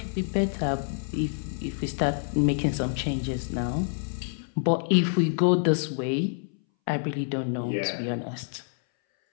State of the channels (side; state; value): right; silent; 60 dB below the other